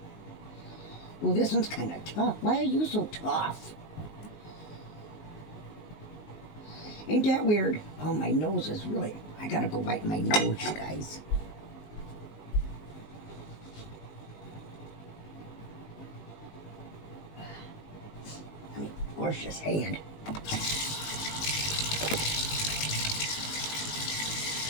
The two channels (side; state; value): right; late; 19 ms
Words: Oh, this one's kind of tough. Why are you so tough? Ain't that weird? Oh, my nose is really... I gotta go wipe my nose, you guys. I mean, wash this hand.